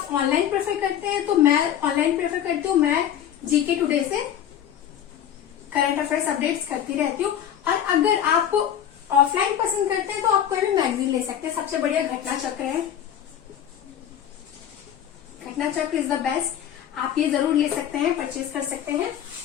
ऑनलाइन प्रेफर करते हैं तो मैं ऑनलाइन प्रेफर करती हूँ। मैं जीके टुडे से करंट अफेयर्स अपडेट्स करती रहती हूँ। और अगर आप ऑफलाइन पसंद करते हैं तो आप कोई भी मैगजीन ले सकते हैं। सबसे बढ़िया घटना चक्र है, घटना चक्र इज द बेस्ट। आप ये जरूर ले सकते हैं, परचेज कर सकते हैं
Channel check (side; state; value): right; quieter; 9.9 dB